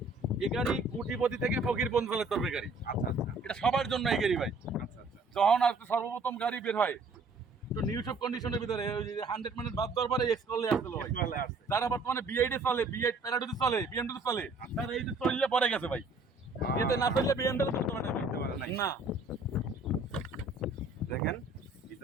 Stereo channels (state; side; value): quieter; left; 3.4 dB